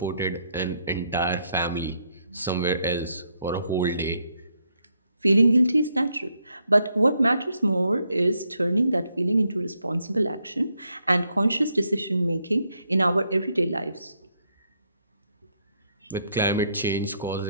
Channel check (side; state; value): both; inverted; correlation -0.76